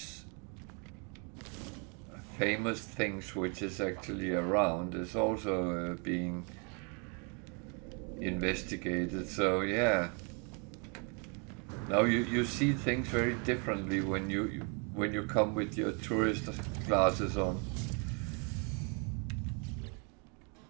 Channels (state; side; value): quieter; left; 35.8 dB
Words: famous things which is actually around is also being investigated. So yeah. Now you see things very differently when you come with your tourist glasses on.